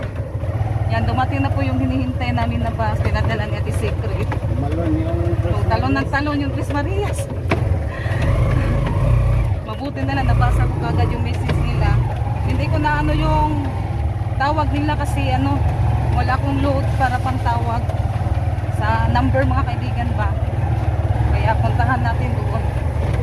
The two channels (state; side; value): identical; both; correlation 1.00